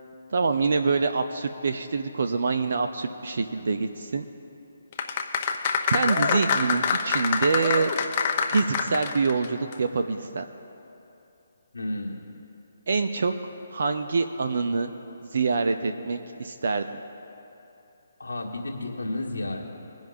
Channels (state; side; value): inverted; both; correlation -0.79